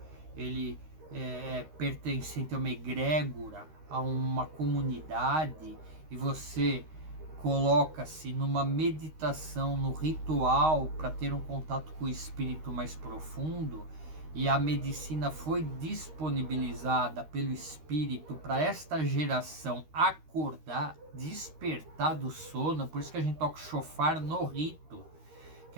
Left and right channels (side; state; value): left; late; 13 ms